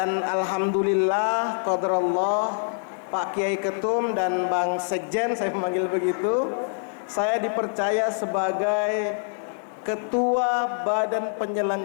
alhamdulillah, qadarullah, Pak Kiai Ketum dan Bang Sekjen, saya memanggil begitu, saya dipercaya sebagai Ketua Badan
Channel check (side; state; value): right; silent; digital silence